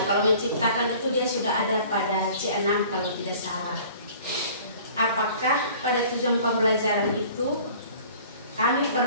kalau menciptakan itu dia sudah ada pada C6 kalau tidak salah. Apakah pada tujuan pembelajaran itu kami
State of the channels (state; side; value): inverted; both; correlation -0.48